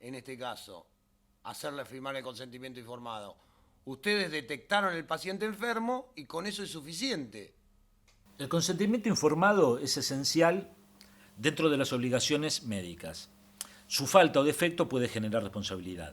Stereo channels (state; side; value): identical; both; correlation 1.00